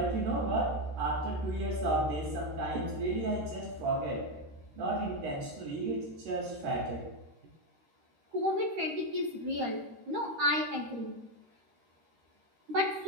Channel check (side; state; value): left; late; 13 ms